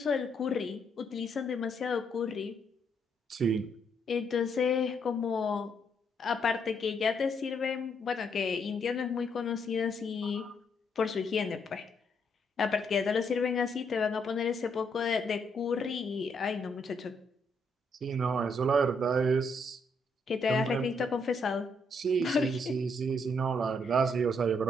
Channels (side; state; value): both; normal; correlation 0.74